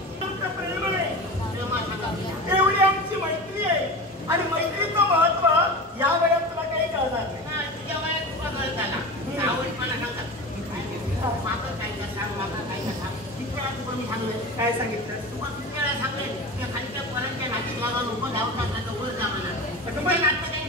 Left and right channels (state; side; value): normal; both; correlation 0.29